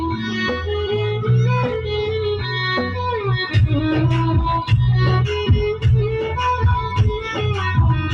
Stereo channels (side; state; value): both; identical; correlation 1.00